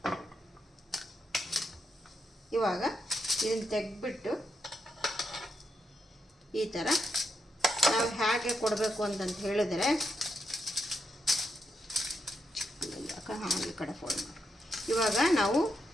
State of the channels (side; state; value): both; normal; correlation 0.82